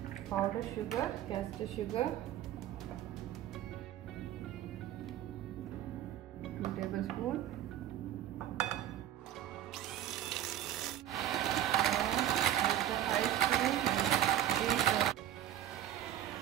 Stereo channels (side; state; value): left; quieter; 11.9 dB